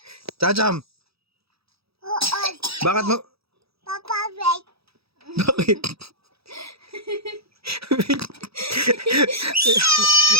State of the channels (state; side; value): late; left; 0.77 ms